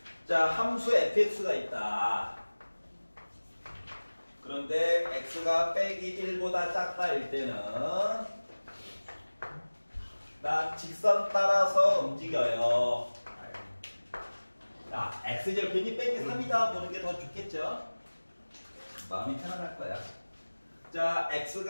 자, 함수 fx가 있다. 그런데 x가 빼기 1보다 작다일 때는 나 직선 따라서 움직여요. 자, x절편이 빼기 3이다 보는 게 더 좋겠죠? 마음이 편안할 거야. 자,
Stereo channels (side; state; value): both; inverted; correlation -1.00